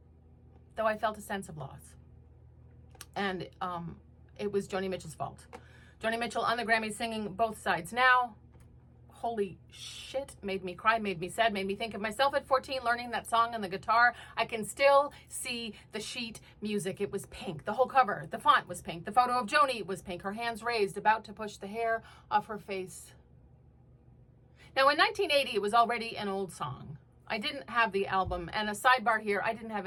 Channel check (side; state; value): both; identical; correlation 1.00